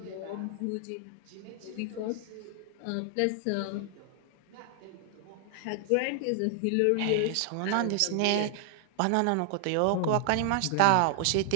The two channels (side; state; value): both; different; correlation 0.00